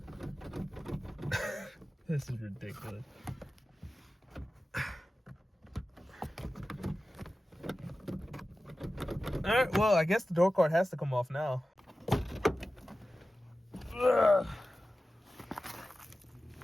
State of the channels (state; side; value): normal; both; correlation 0.95